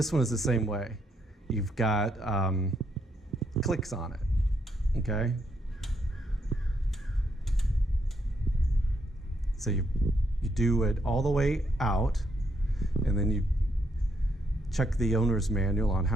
one is the same way. You've got clicks on it, okay? So you do it all the way out, and then you check the owner's manual on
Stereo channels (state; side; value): normal; both; correlation 0.75